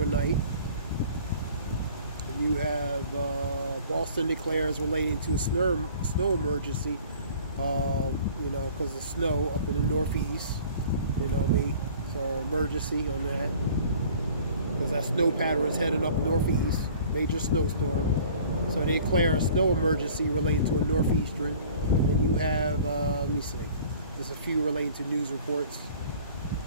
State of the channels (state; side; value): inverted; both; correlation -0.49